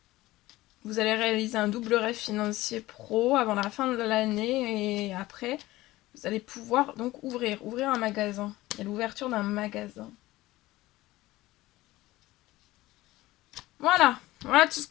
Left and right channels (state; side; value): quieter; right; 17.9 dB